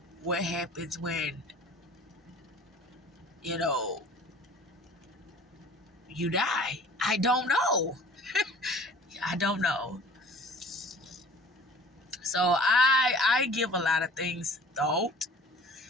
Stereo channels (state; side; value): normal; both; correlation 0.47